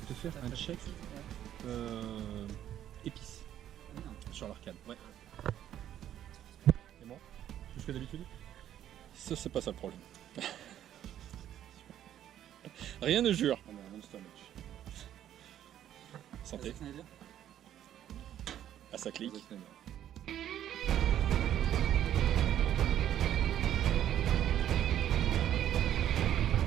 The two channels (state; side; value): quieter; left; 11.1 dB